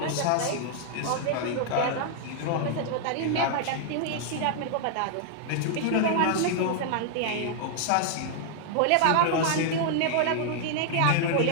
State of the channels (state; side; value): different; both; correlation 0.00